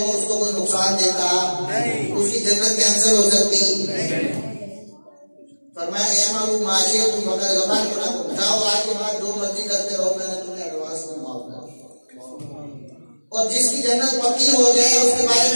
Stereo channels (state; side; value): inverted; both; correlation -1.00